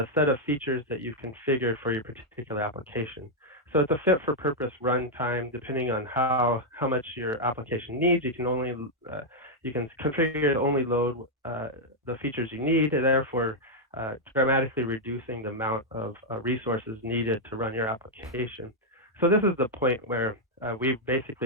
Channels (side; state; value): both; normal; correlation -0.02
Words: set of features that you've configured for your particular application. So it's a fit for purpose runtime. Depending on how much your application needs, you can only you can configure to only load the features you need, and therefore dramatically reducing the amount of resources needed to run your application. So this is the point where we've